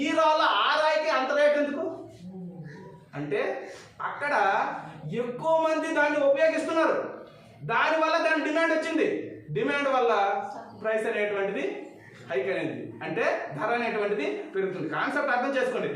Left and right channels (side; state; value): both; identical; correlation 1.00